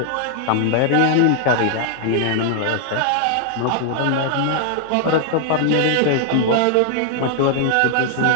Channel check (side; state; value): both; different; correlation 0.00